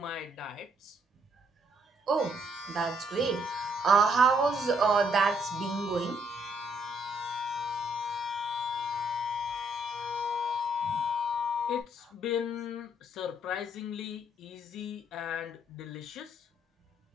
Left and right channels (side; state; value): both; normal; correlation 0.70